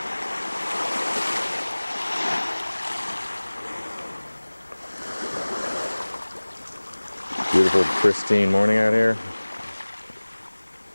Beautiful, pristine morning out here.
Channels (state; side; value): inverted; both; correlation -1.00